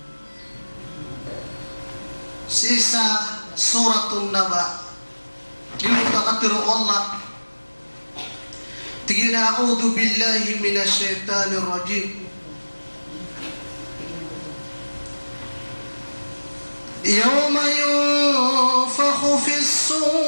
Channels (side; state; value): both; inverted; correlation -1.00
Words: sa isa suratun naba yung kakatiro Allah tigina a'udhu billahi minasyaitanir rajim يوم ينفخ في